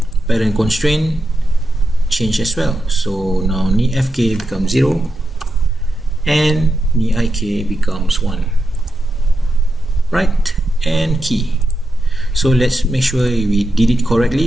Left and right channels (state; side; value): normal; both; correlation 0.87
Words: parent constraint change as well. So now knee FK becomes 0 and knee IK becomes 1. Right, and key. So let's make sure we did it correctly.